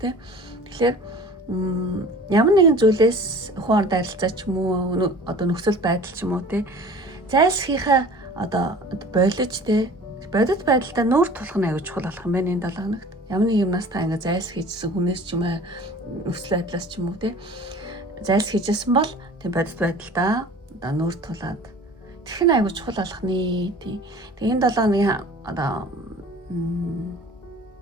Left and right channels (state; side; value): normal; both; correlation 0.44